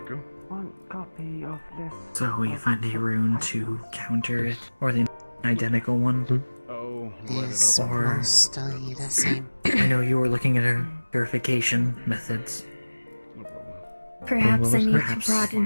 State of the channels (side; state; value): both; inverted; correlation -1.00